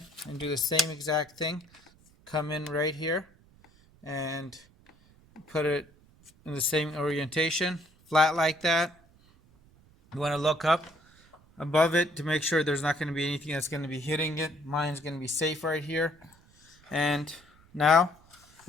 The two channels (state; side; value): noise; right; rumble, 29 dB below the sound